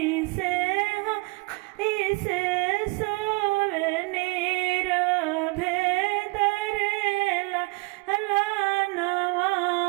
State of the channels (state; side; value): quieter; left; 27.4 dB